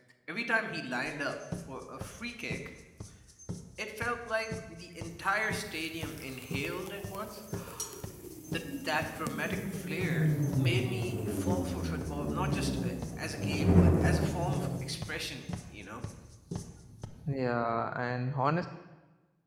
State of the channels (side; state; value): both; identical; correlation 1.00